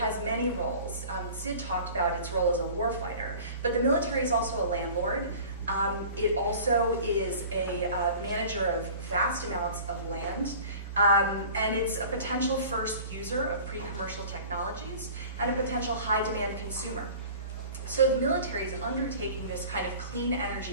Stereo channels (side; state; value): both; inverted; correlation -0.43